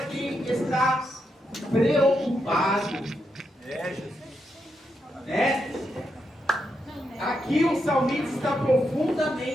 quem está preocupado. Jesus. Né? Aqui o salmista está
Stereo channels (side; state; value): both; normal; correlation 0.83